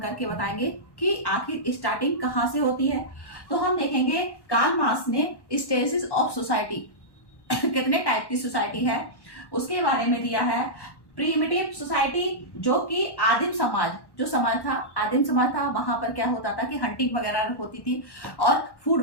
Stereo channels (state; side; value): late; right; 1.1 ms